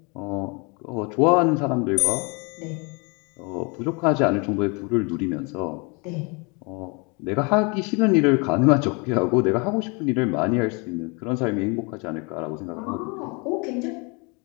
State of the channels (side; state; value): right; quieter; 31.2 dB